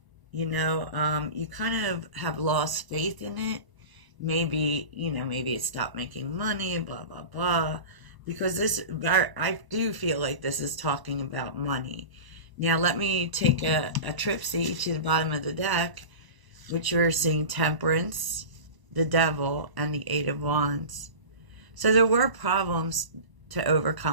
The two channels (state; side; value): late; left; 1.0 ms